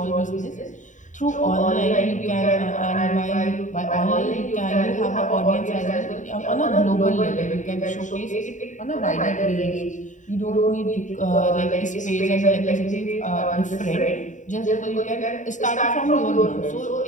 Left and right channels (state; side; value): late; right; 0.36 ms